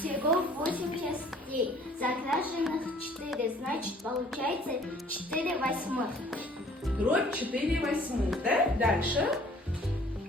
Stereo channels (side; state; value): both; normal; correlation 0.55